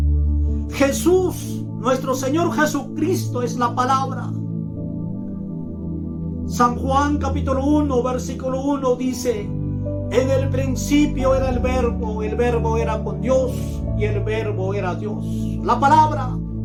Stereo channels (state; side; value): identical; both; correlation 1.00